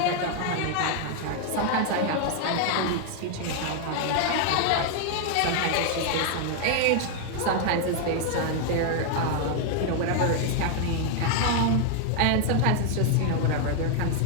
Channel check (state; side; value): different; both; correlation 0.00